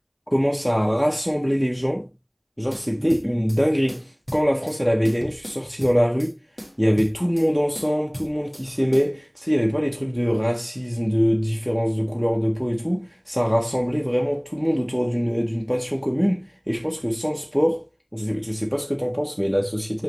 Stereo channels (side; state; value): both; identical; correlation 1.00